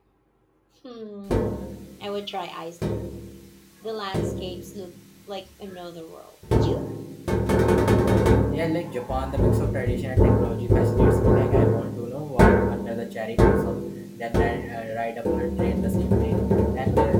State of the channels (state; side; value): identical; both; correlation 1.00